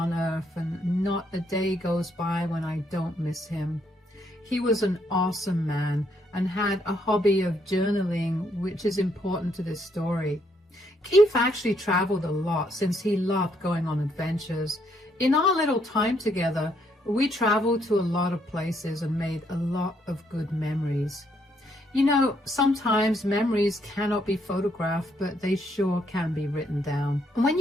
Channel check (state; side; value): normal; both; correlation 0.72